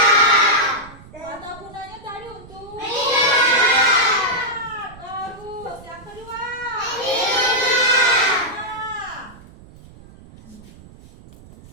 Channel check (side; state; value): right; noise; rumble, 21 dB below the sound